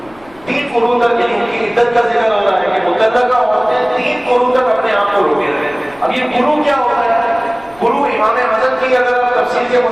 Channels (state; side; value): noise; left; rumble, 27 dB below the sound